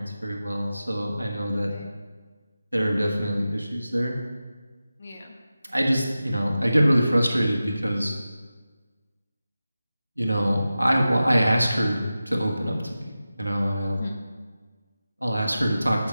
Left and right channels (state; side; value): inverted; both; correlation -0.94